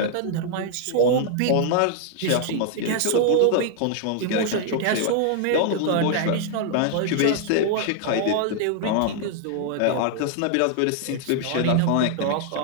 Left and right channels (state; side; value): different; both; correlation 0.00